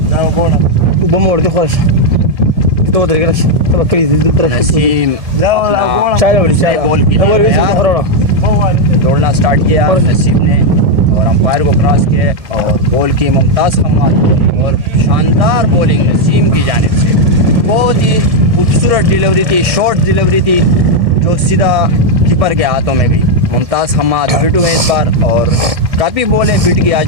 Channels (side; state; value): left; late; 1.6 ms